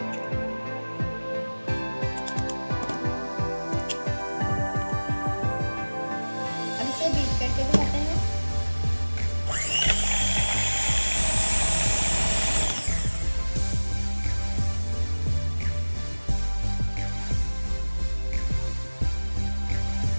अब इसे बीट करके दिखाते हैं।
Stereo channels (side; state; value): both; inverted; correlation -1.00